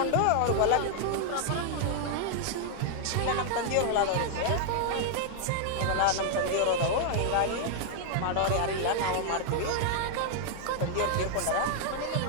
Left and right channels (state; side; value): different; both; correlation 0.00